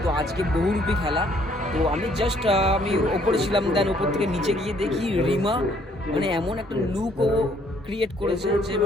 তো আজকে বহুরূপী খেলা। তো আমি জাস্ট আমি ওপরে ছিলাম, দেন ওপর থেকে নিচে গিয়ে দেখি রিমা মানে এমন একটা লুক ও ক্রিয়েট করেছে যে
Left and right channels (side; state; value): both; normal; correlation 0.64